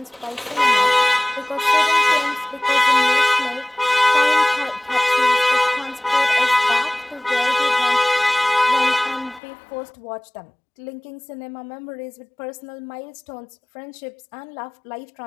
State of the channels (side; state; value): right; drops out; at 9.4 s